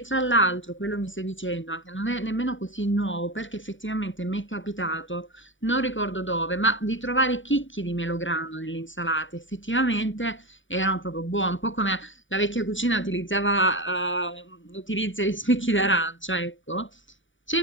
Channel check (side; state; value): right; late; 0.56 ms